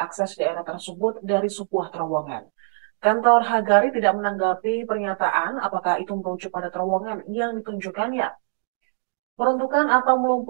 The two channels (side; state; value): left; silent; digital silence